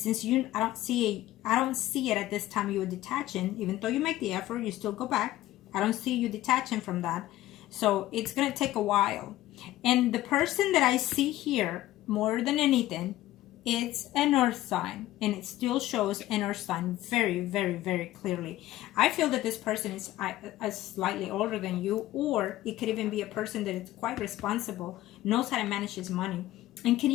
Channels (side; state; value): right; quieter; 15.3 dB